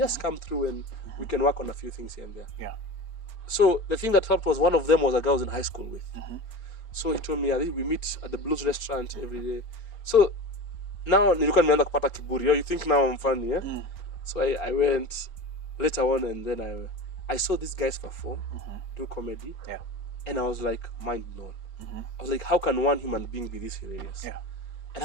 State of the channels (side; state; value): right; late; 4.4 ms